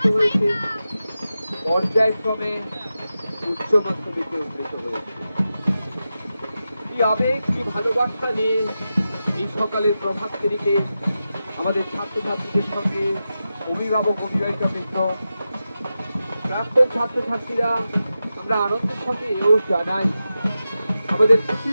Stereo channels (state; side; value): inverted; both; correlation -0.91